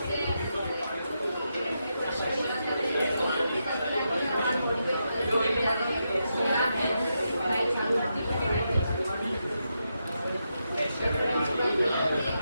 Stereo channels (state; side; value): inverted; both; correlation -0.85